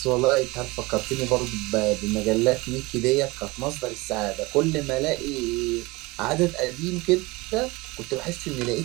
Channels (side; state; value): left; quieter; 23.1 dB